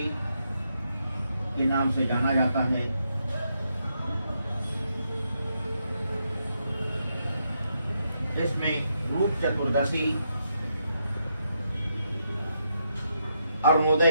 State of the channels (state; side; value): inverted; both; correlation -0.80